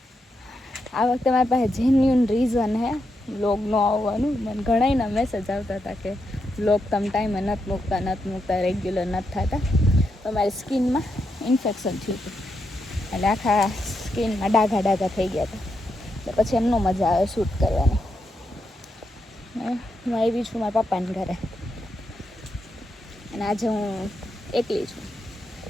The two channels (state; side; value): normal; both; correlation 0.83